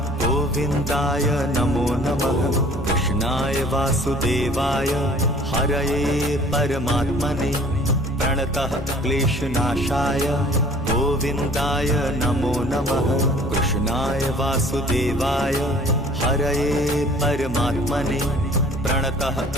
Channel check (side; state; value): both; normal; correlation 0.52